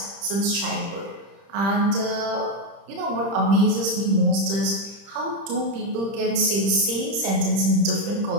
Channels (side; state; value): left; late; 30 ms